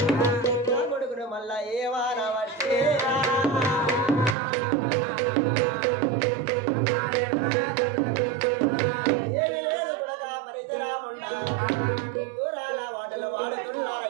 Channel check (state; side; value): drops out; left; at 4.4 s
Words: నా కొడుకును మళ్ళా ఏవానా వచ్చే ఏమి లేదు కొడక పరిసరాముండా దూరాల వాటలు